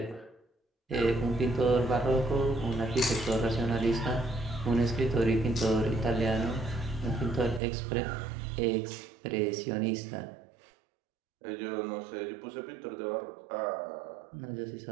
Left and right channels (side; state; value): left; drops out; at 7.6 s